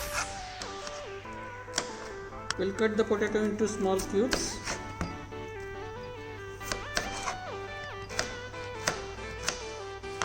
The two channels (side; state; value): both; identical; correlation 1.00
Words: We'll cut the potato into small cubes.